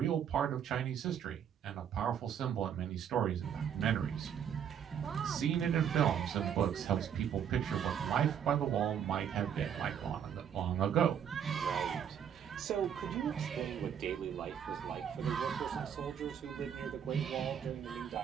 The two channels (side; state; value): left; quieter; 8.5 dB